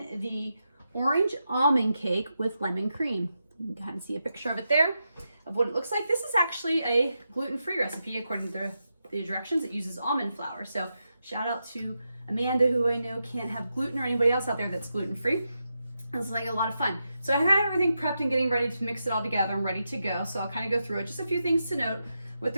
the orange almond cake with lemon cream. You can kind of see a picture of it there, of what it looks like. This is actually a gluten-free recipe according to the directions. It uses almond flour. So shout out to Amanda, who I know can't have gluten, or anybody else out there that's gluten-free. It's like a lot of fun. So I had everything prepped and getting ready to mix it all together. I'm ready to go. So I'll kind of go through it. Just a few things to note with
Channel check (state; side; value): inverted; both; correlation -0.87